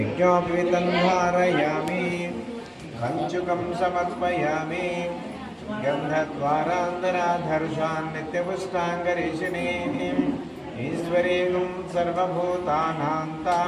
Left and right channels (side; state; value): both; identical; correlation 1.00